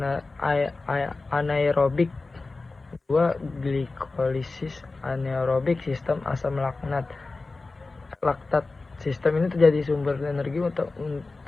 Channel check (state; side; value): quieter; right; 3.6 dB